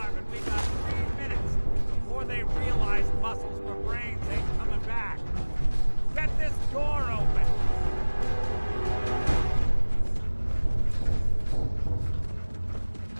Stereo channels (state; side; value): inverted; both; correlation -1.00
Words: but we got 3 minutes before they realize muscles for brains ain't coming back. Get this door open!